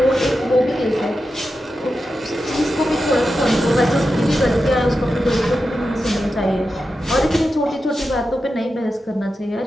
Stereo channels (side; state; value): both; normal; correlation 0.90